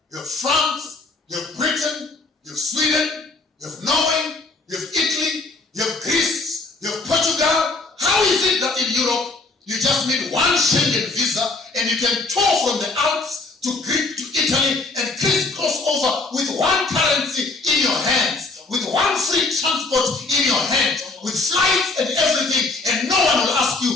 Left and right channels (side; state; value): right; quieter; 3.5 dB